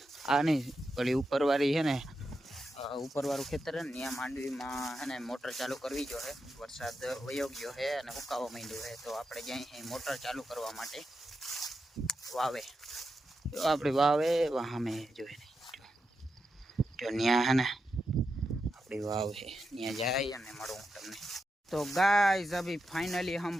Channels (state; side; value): normal; both; correlation 0.87